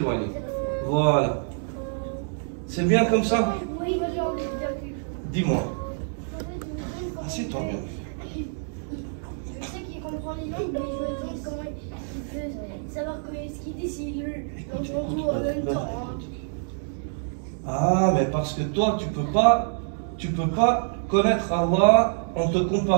Voilà. C'est bien comme ça? Oui. Dis-moi. Assieds-toi bien. Je sais qu'il comprend les langues, mais je me demande comment il peut savoir ce qu'il dit s'il l'entend tout en même temps. Ah, mais parce que toi, tu peux pas connaître Allah en te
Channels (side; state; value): left; silent; digital silence